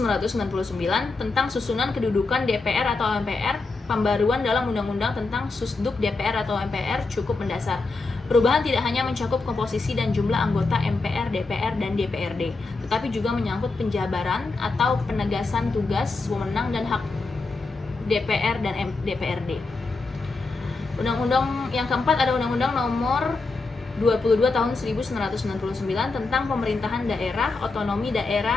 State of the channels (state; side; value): quieter; right; 3.7 dB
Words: tentang susunan kedudukan DPR atau MPR, pembaruan dalam Undang-Undang tentang Susduk DPR atau MPR cukup mendasar. Perubahan tidak hanya mencakup komposisi dan jumlah anggota MPR, DPR, dan DPRD, tetapi juga menyangkut penjabaran atau penegasan tugas, wewenang, dan hak DPR dan DPRD. Undang-undang yang keempat ada Undang-Undang Nomor 22 Tahun 1999 tentang Pemerintahan Daerah. Otonomi